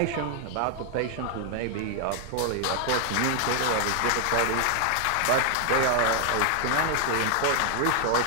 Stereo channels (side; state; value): both; different; correlation 0.00